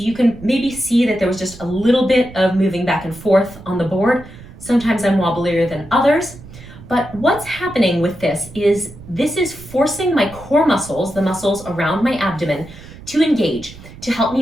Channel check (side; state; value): right; noise; rumble, 17 dB below the sound